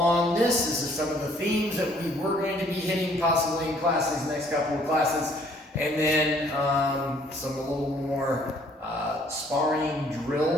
this. This is some of the themes that we were going to be hitting possibly in classes, next couple of classes. And then some a little more sparring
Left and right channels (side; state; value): both; normal; correlation 0.61